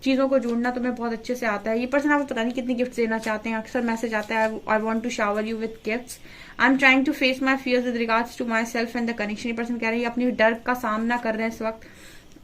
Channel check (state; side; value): identical; both; correlation 1.00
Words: चीजों को जोड़ना तुम्हें बहुत अच्छे से आता है। ये पर्सन आपको पता नहीं कितनी गिफ्ट देना चाहते हैं, अक्सर मैसेज आता है I want to shower you with gifts, I am trying to face my fears with regards to myself and the connection. ये पर्सन कह रहे हैं अपने डर का सामना कर रहे हैं इस